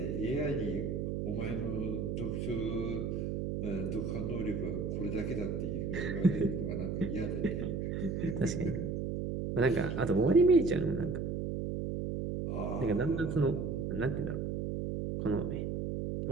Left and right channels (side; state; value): right; noise; hum, 2 dB below the sound